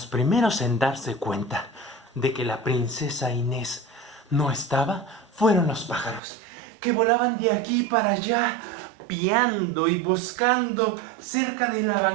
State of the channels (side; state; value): left; drops out; at 6.2 s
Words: primeros en darse cuenta de que la princesa Inés no estaba fueron los pájaros, que volaban de aquí para allá, piando y buscando cerca de la